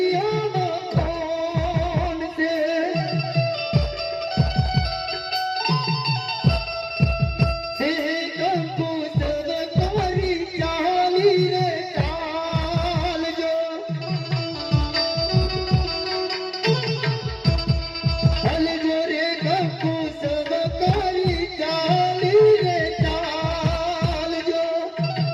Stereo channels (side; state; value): both; identical; correlation 1.00